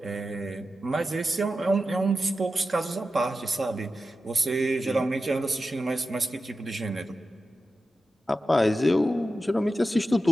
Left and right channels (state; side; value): normal; both; correlation 0.92